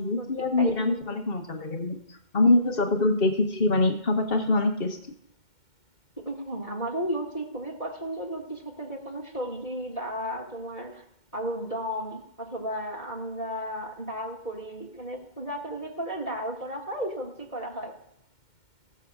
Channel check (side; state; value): right; late; 2.1 ms